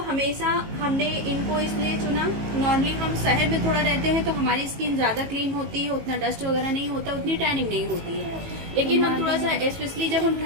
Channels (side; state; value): left; late; 18 ms